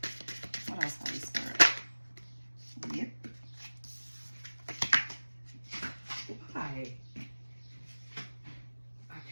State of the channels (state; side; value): inverted; both; correlation -1.00